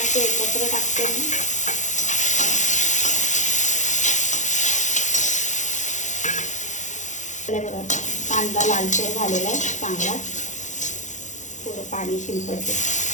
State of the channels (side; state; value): right; late; 0.35 ms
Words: एकत्र टाकते मी। बघा कांदा लालसर झालेला आहे चांगला, थोडं पाणी शिंपडते।